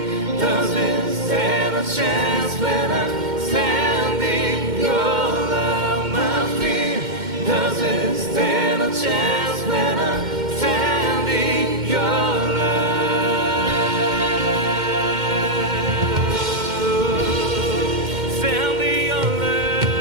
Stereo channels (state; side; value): late; left; 2.1 ms